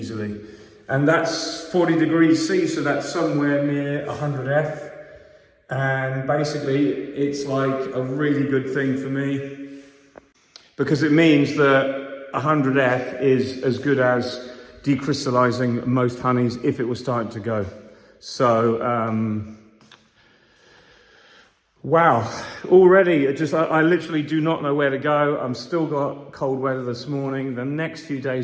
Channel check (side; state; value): both; identical; correlation 1.00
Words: And that's 40 degrees C, so that's somewhere near 100 F. And basically it's like a really good thing for me, because it means that 100 F is as good as decrystallizing most honeys if it was starting to go. So wow, already I literally do not know where to go. I'm still got cold weather this morning. The next few